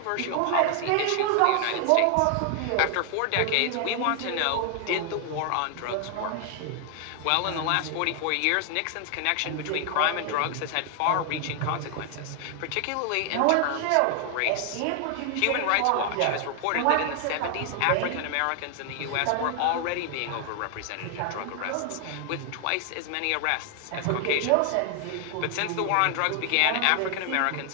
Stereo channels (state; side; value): different; both; correlation 0.00